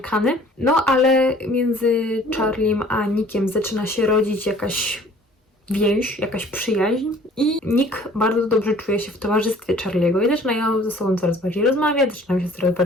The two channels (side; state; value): both; normal; correlation 0.53